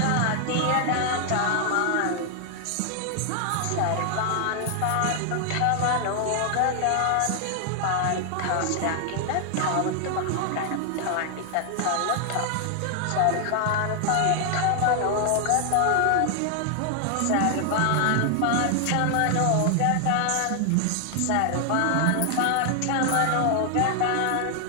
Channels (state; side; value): different; both; correlation 0.00